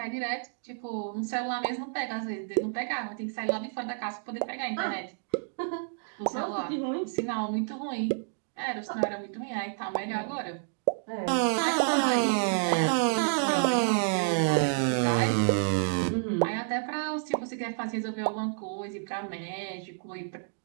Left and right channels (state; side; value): silent; left; digital silence